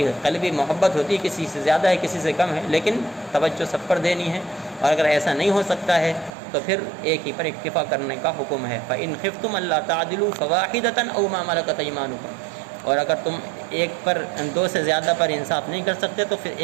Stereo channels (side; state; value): left; drops out; at 6.3 s